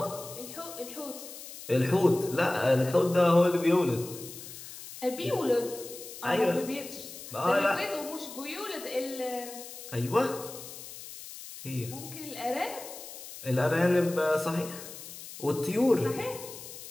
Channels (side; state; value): left; noise; hiss, 13 dB below the sound